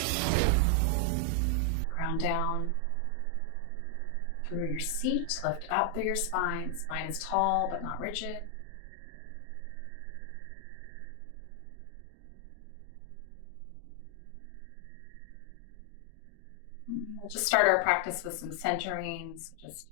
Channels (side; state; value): both; different; correlation 0.00